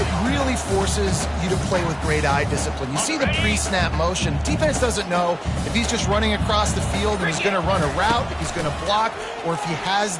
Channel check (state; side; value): identical; both; correlation 1.00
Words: really forces you to play with great eye discipline. You see the pre-snap motion. Defense doesn't know if he's just running across the field and he's going to run a route, if he's going to block, or if he has